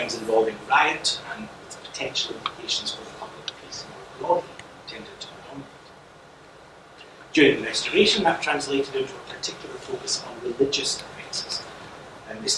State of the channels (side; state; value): both; identical; correlation 1.00